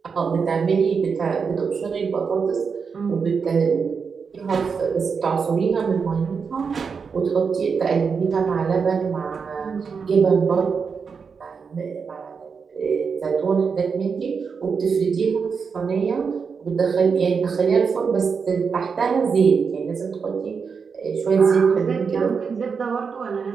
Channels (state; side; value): quieter; left; 5.7 dB